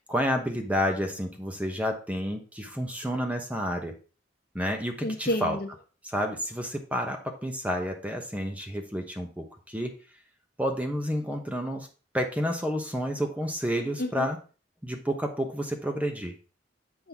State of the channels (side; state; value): both; normal; correlation 0.68